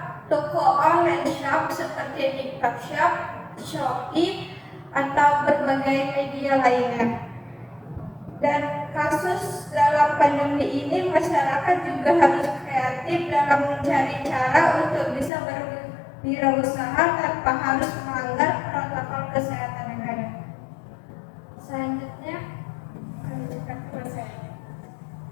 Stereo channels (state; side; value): drops out; right; at 15.3 s